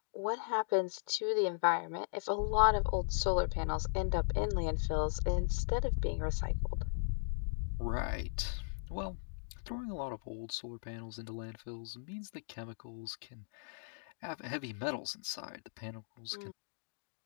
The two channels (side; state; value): right; silent; digital silence